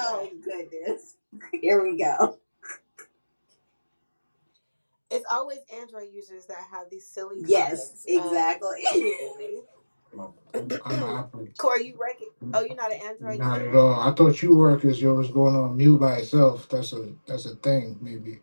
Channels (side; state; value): both; inverted; correlation -1.00